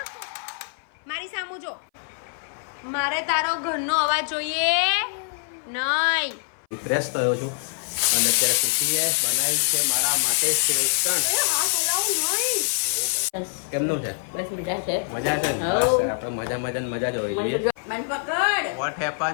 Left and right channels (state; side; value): silent; right; 58 dB below the other